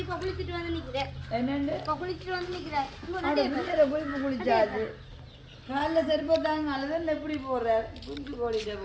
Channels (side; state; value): both; identical; correlation 1.00